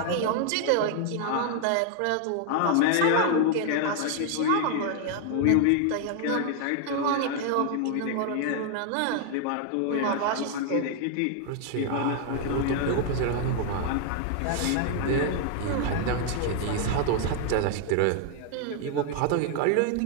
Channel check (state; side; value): different; both; correlation 0.00